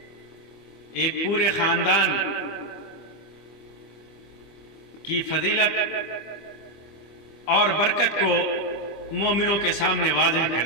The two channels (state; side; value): late; right; 25 ms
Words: ایک پورے خاندان کی فضیلت اور برکت کو مومنوں کے سامنے واضح کر